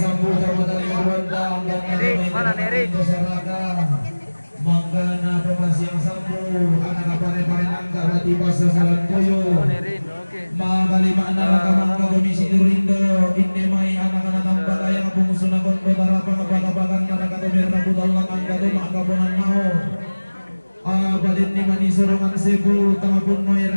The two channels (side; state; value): both; inverted; correlation -1.00